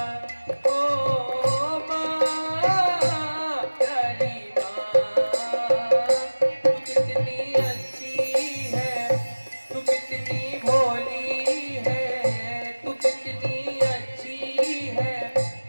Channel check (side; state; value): both; inverted; correlation -1.00